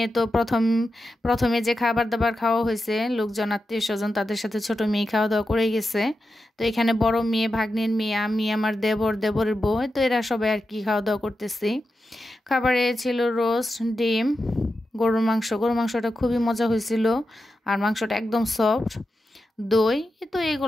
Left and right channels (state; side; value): normal; both; correlation 0.89